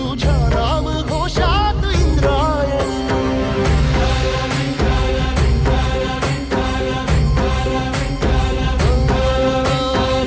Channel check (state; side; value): identical; both; correlation 1.00